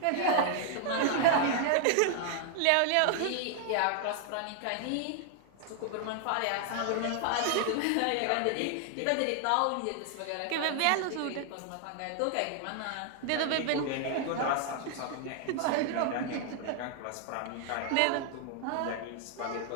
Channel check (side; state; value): both; different; correlation 0.00